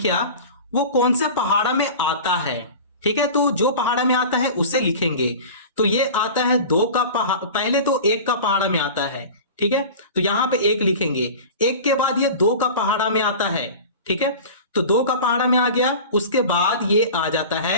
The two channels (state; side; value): inverted; both; correlation -0.35